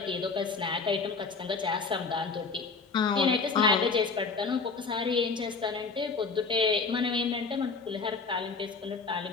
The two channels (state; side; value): quieter; right; 4.6 dB